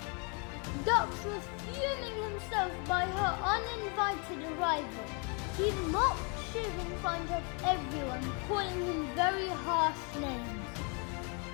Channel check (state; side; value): quieter; right; 34.6 dB